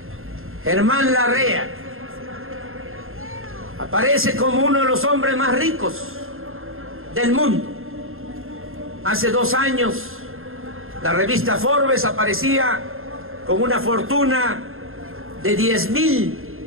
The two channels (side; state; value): left; late; 0.61 ms